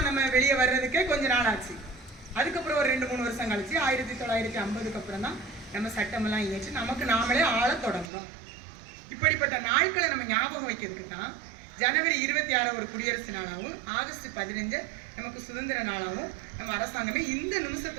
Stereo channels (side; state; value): left; drops out; at 8.1 s